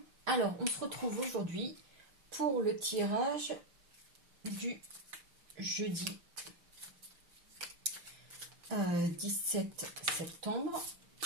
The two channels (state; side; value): late; left; 6.0 ms